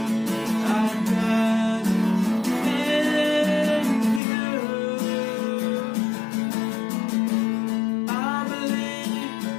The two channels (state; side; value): drops out; right; at 4.2 s